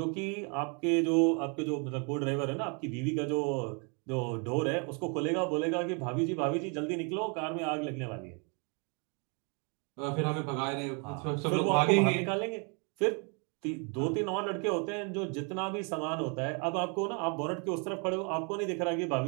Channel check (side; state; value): left; quieter; 35.9 dB